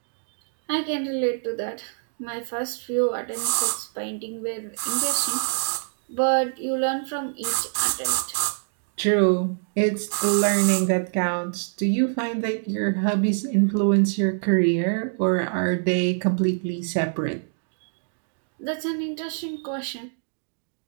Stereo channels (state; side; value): silent; left; digital silence